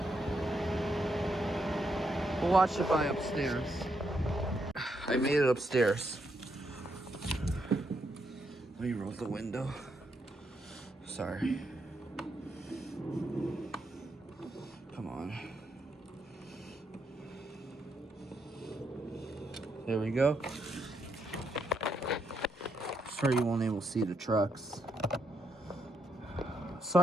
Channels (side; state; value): both; normal; correlation 0.79